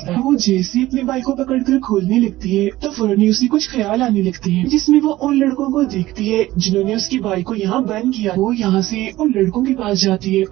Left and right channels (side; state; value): left; quieter; 16.6 dB